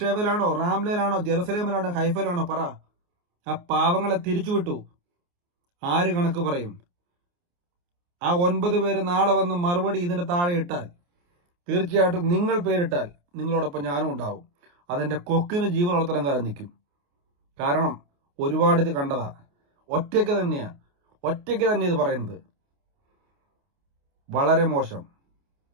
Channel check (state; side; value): late; left; 28 ms